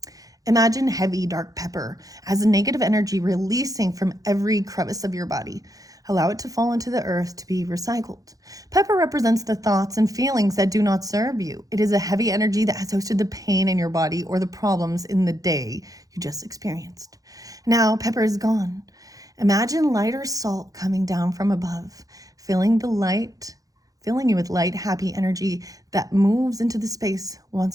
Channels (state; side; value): late; left; 0.17 ms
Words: Imagine heavy dark pepper as a negative energy releasing from every crevice of your body. Allow it to fall into the earth to be recycled. Pepper represents the thoughts and feelings that do not serve you. It is a heavy energy that has hosted the pain in your body or the problems in the day you just experienced. Now, pepper is gone. Imagine lighter salt coming down from above, filling you with light, happy energy that moves into the space